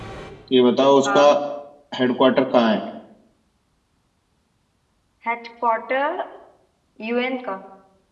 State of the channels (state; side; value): identical; both; correlation 1.00